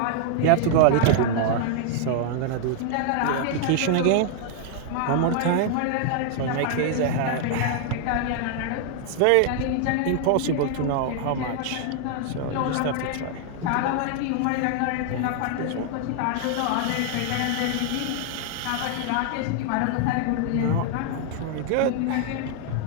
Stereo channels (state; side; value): different; both; correlation 0.00